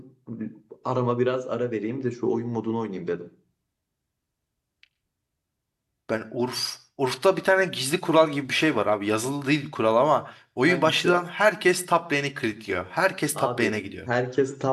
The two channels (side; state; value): both; identical; correlation 1.00